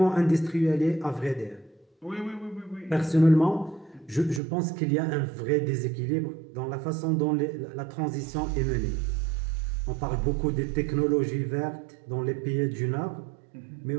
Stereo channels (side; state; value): left; drops out; at 4.4 s